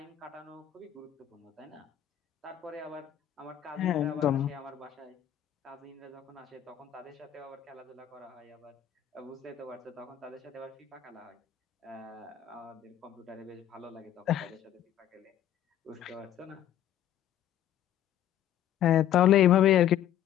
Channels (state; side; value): quieter; right; 11.0 dB